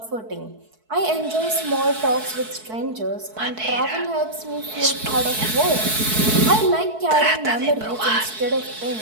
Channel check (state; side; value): late; left; 4.6 ms